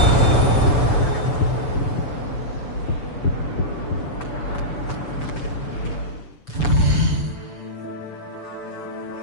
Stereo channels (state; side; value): late; right; 6.9 ms